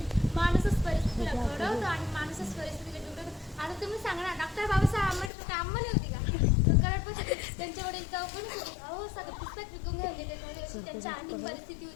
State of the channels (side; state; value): right; drops out; at 5.3 s